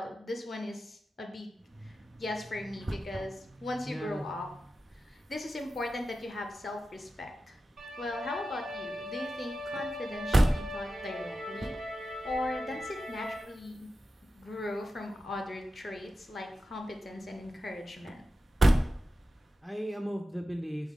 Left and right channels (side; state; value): both; normal; correlation 0.92